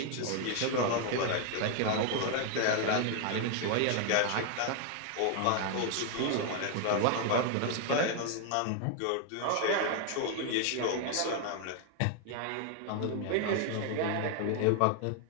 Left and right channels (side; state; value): both; different; correlation 0.01